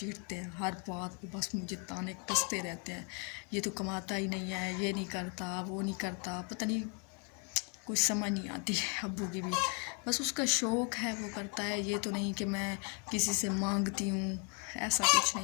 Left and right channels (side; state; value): right; quieter; 37.2 dB